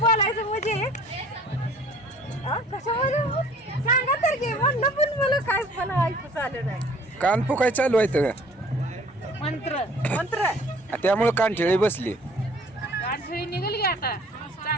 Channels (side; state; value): both; normal; correlation 0.53